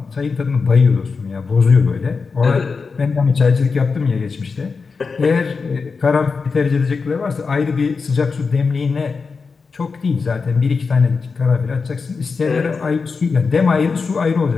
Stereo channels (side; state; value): right; quieter; 4.8 dB